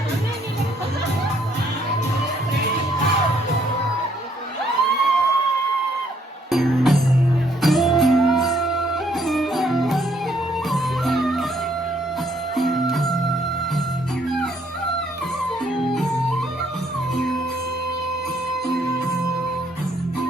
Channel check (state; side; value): normal; both; correlation 0.67